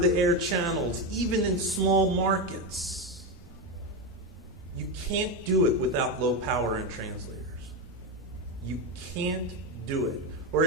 channels, even in small markets. You can't do it without low power and translators. You can't do it. Or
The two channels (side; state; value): both; normal; correlation 0.12